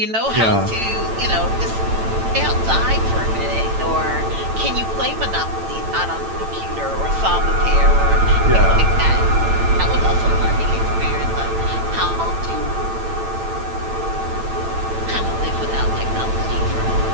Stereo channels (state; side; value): late; left; 8.9 ms